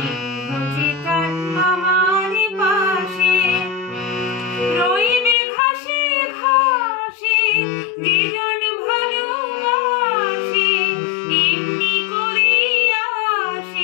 যে তার আমার পাশে রইবে ঘাসে ঘাসে যে জন ভালোবাসে এমনি করে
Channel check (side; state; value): right; drops out; at 5.4 s